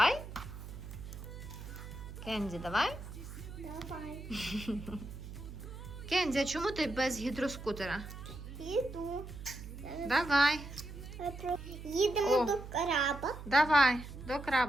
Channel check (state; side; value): noise; right; hum, 11 dB below the sound